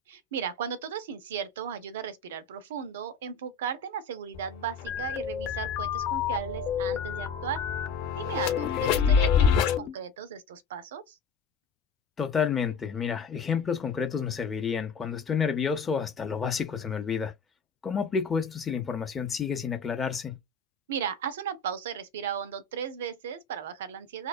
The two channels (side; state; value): right; quieter; 4.1 dB